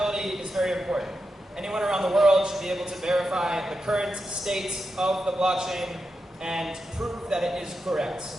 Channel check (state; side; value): normal; both; correlation 0.88